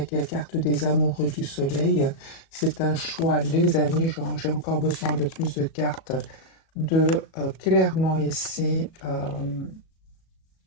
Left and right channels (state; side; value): late; right; 37 ms